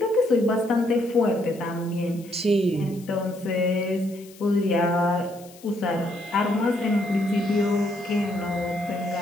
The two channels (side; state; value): left; noise; hiss, 23 dB below the sound